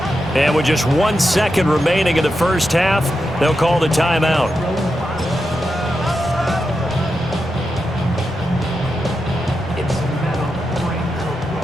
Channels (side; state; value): both; normal; correlation 0.88